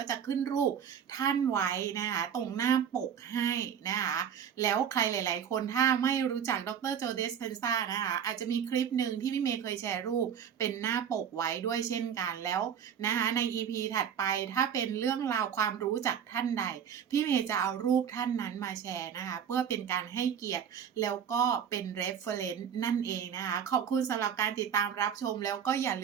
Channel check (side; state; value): left; quieter; 8.2 dB